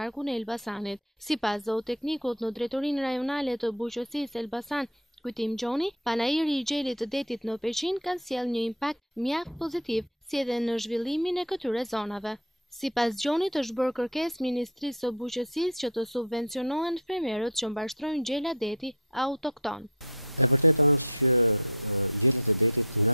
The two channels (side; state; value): both; normal; correlation 0.17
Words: e Elbasanit. Sipas zooteknikut në drejtorinë rajonale të bujqësisë Elbasan, Kujtim Gjoni, panairi I gjelit të detit në Peqin ka sjellë një impakt mjaft pozitiv, si edhe në zhvillimin e këtyre zonave. Sipas Gjonit është bërë kërkesë Ministrisë së Bujqësisë që të subvencionohen fermerët që mbashtrojnë gjela deti autokton. E vërteta është që gjelet e detit nga